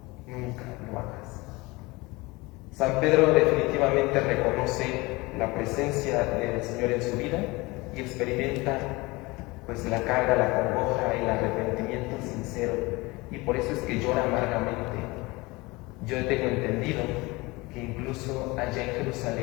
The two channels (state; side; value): quieter; right; 23.3 dB